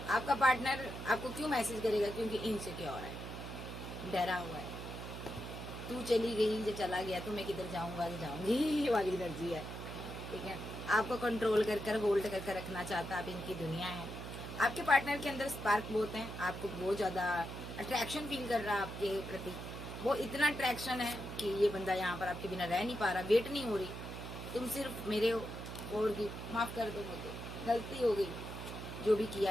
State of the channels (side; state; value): right; noise; hum, 8 dB below the sound